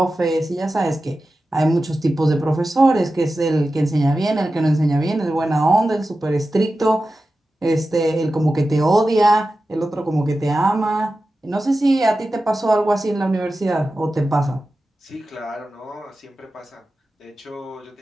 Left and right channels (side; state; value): both; normal; correlation 0.93